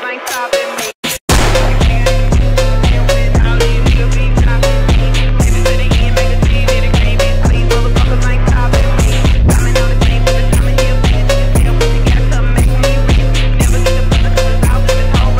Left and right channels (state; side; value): identical; both; correlation 1.00